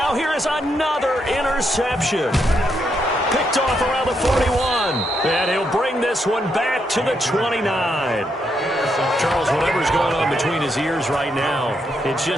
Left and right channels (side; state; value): both; normal; correlation 0.79